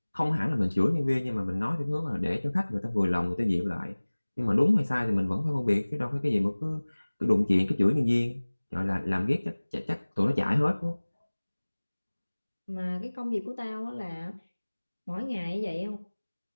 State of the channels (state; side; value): inverted; both; correlation -1.00